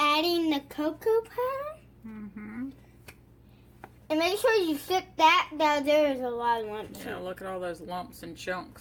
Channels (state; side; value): identical; both; correlation 1.00